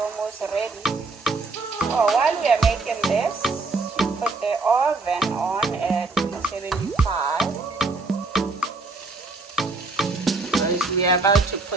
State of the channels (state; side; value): quieter; left; 3.6 dB